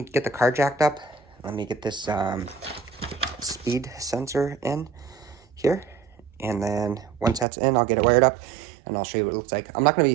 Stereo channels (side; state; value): left; drops out; at 7.5 s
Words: get the car jacked up. Let me get this speed sensor in here. And then once that's in, I'll get it wired up and I'll show you what it looks like. I'm not going to